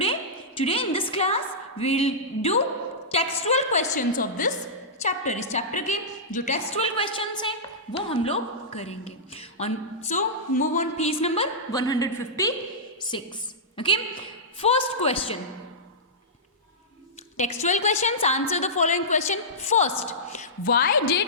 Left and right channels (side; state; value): both; normal; correlation -0.14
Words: in this class will do textual questions of this chapter. इस चैप्टर के जो टेक्सचुअल क्वेश्चंस हैं वो हम लोग करेंगे। On so move on page number 156। Okay, first question, textual questions, answer the following question. First, why